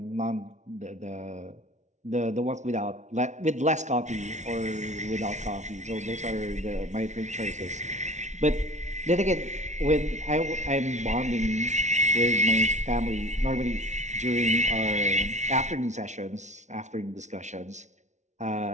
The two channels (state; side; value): late; left; 0.34 ms